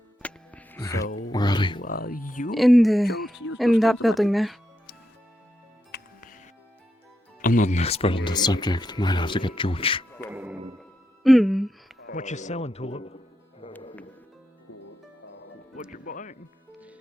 So Where are they? You In that building there. I'm not an expert on this subject. Might have to get George. Mm. What you selling, Tulip? What you buying?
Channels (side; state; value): both; normal; correlation 0.84